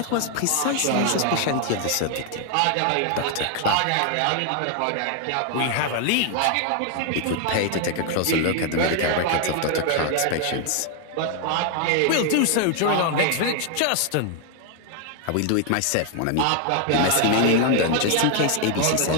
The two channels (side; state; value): both; different; correlation 0.00